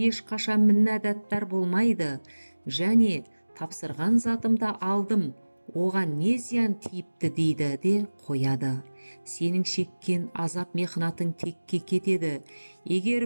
ешқашан міннәдаттар болмайды, және тапсырған затымды алдым, оған не зиян тиіпті дейді де қояды. Сенің шеккен азап мехнатың текке кетеді. Егер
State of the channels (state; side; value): inverted; both; correlation -1.00